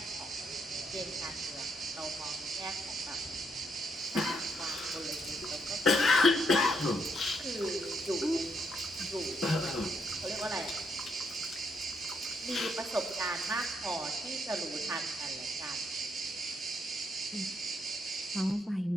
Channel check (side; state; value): both; normal; correlation 0.75